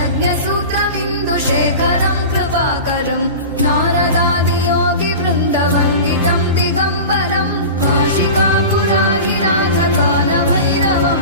कृपाकरम् नारदादियोगि वृन्दवन्दितम् दिगम्बरम् काशिकापुराधिनाथ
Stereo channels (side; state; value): both; inverted; correlation -0.33